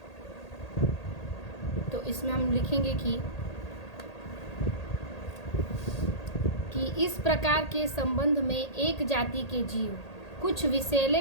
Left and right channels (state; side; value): late; right; 1.8 ms